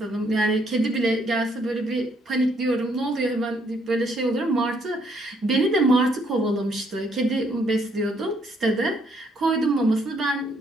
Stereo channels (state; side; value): normal; both; correlation 0.70